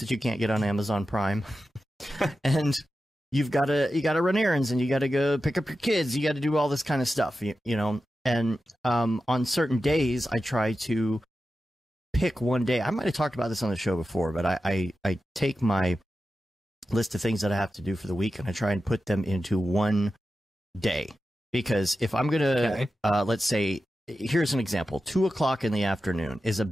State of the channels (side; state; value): both; normal; correlation 0.92